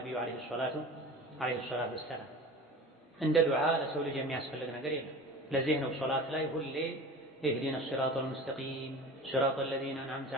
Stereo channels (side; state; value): both; normal; correlation 0.36